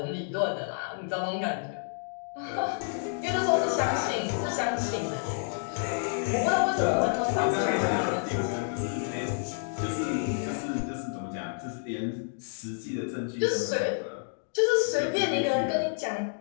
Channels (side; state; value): right; silent; digital silence